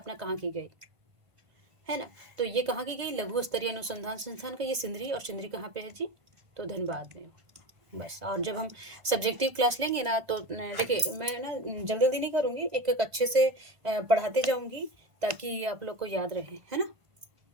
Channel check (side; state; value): left; late; 1.5 ms